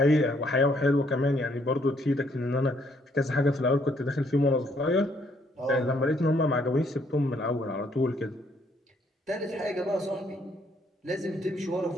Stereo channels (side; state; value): both; normal; correlation 0.68